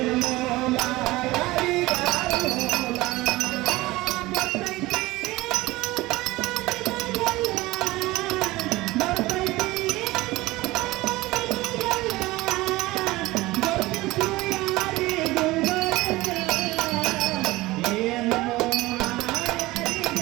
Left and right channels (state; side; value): quieter; left; 19.5 dB